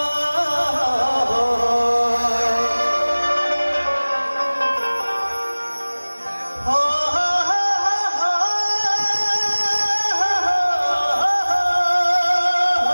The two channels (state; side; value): inverted; both; correlation -1.00